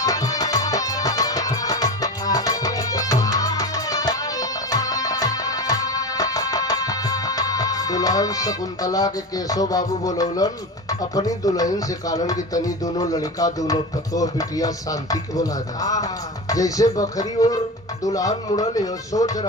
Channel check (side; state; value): both; normal; correlation 0.26